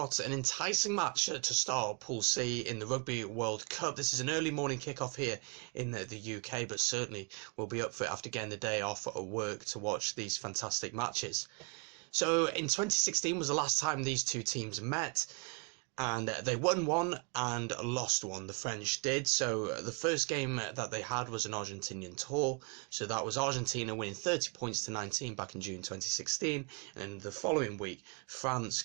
an enticing match to start Pool C in the Rugby World Cup. This is an early morning kickoff here in the UK, but certainly we'll be up for it after getting the day off at work to watch these fantastic matches. So in 2016 was the last time these two teams met, and they won one and lost one. The French did. So the first game that they had was an Argentinian tour. So that was Argentina winning 30 points to 19 back in June 2016. And the following week, France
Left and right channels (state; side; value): quieter; left; 34.6 dB